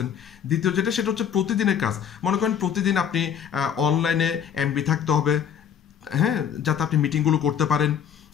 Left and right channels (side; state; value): right; quieter; 8.4 dB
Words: দ্বিতীয় যেটা সেটা হচ্ছে প্রতিদিনের কাজ। মনে করেন প্রতিদিন আপনি অনলাইনে এমবি থাকতে হবে, হ্যাঁ, যাতে আপনি মিটিংগুলো করতে পারেন।